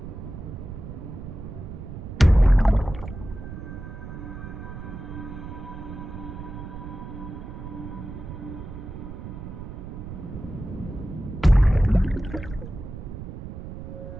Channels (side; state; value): right; noise; rumble, 9 dB below the sound